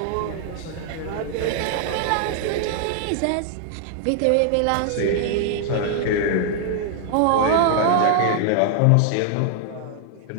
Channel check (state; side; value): different; both; correlation 0.00